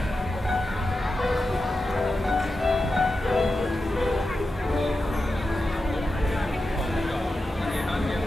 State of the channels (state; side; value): normal; both; correlation 0.91